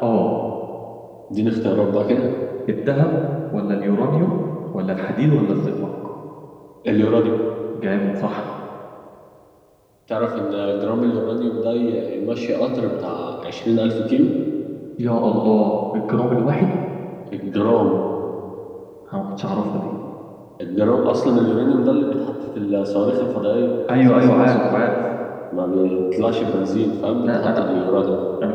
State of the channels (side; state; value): both; identical; correlation 1.00